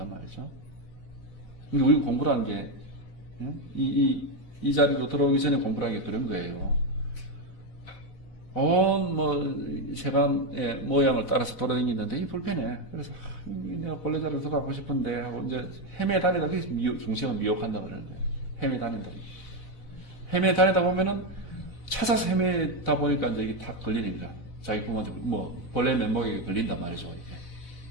말이죠. 근데 우리가 공부라는 게, 이 자리로 들어오기 전에 공부라는 게 그런 거예요. 세간의 모양을 따라서 돌아다니는데, 이 불편해. 그래서, 내가 본래 자리로 들어가고 싶은데, 하고 이제 헤매 다니다, 그래서 중생은 미혹한다 그러는 거예요. 헤매 다닌다. 헤매 다니다 보면은, 찾아서 헤매다 보니까 이제 이게 다 걸리는 거야. 자기 부모한테, 본래 면목에 걸린단 말이죠, 이게.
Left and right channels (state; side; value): late; right; 4.0 ms